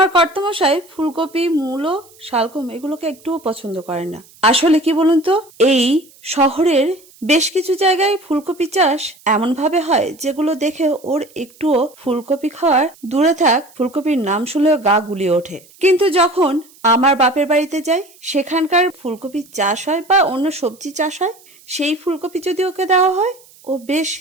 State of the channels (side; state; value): right; noise; hiss, 26 dB below the sound